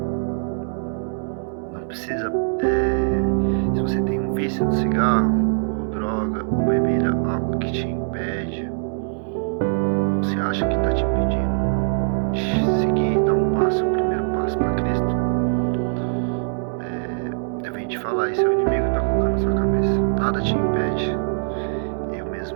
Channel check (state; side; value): silent; left; digital silence